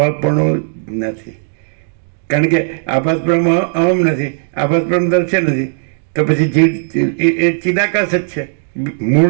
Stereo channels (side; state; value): left; silent; digital silence